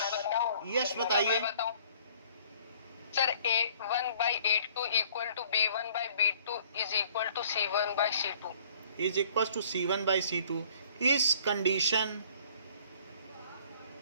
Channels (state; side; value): inverted; both; correlation -0.56